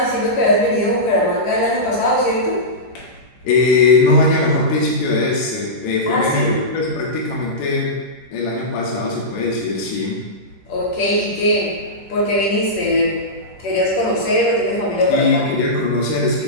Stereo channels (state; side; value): late; right; 10 ms